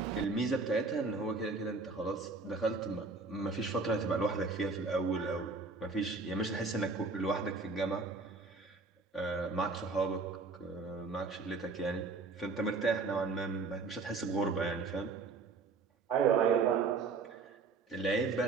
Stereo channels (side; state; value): left; quieter; 4.2 dB